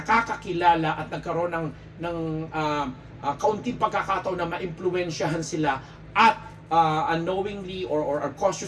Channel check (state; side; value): identical; both; correlation 1.00